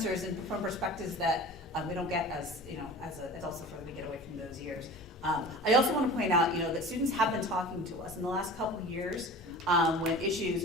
from perspectives that we don't get as adults before we get away from those years. I also want to point out, that students have been talking to us in the last couple of years. when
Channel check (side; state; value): both; normal; correlation 0.38